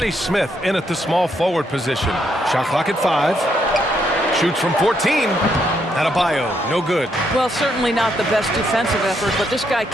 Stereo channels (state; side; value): normal; both; correlation 0.76